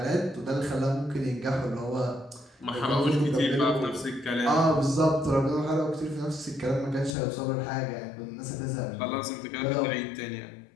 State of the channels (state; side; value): drops out; right; at 7.2 s